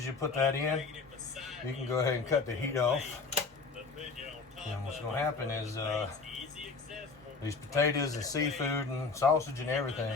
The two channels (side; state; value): right; quieter; 4.4 dB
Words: you put that in, you can go ahead and cut the heat off. And what's gonna happen is these potatoes and seafood and sausage and